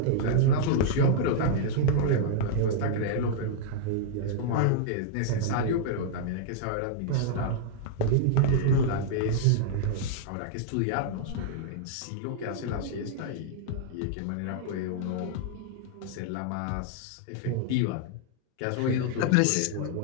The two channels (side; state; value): both; different; correlation -0.01